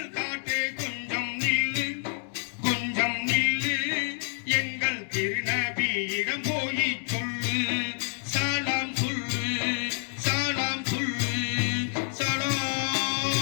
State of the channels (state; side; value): silent; right; 59 dB below the other